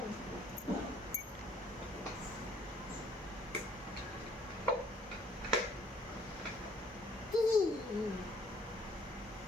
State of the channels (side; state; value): both; normal; correlation 0.62